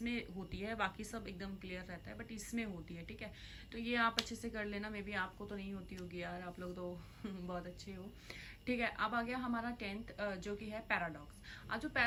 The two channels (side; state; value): both; identical; correlation 1.00